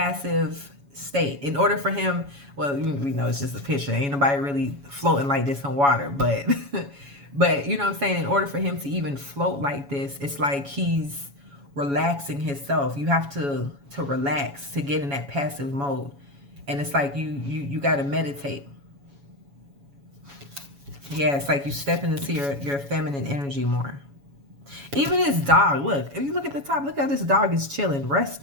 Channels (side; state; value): left; late; 7.1 ms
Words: state. In order for him, well, we know it's just a picture, ain't nobody really floating like this in water, but but you know what I'm saying, in order for him to even float like this, it's like he's relaxing himself. You have to relax to get in that passive mode, and it's like you got to meditate. Yeah, it's like you stepping into your feminine energy more. Even this dog, look, if you look at the top, look how this dog is chilling,